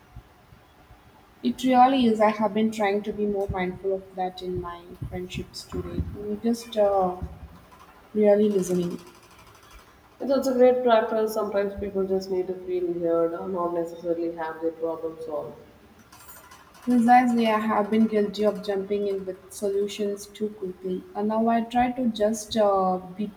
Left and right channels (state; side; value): identical; both; correlation 1.00